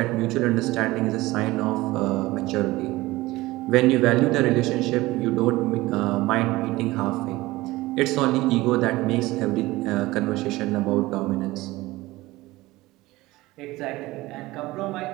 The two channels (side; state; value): left; quieter; 19.2 dB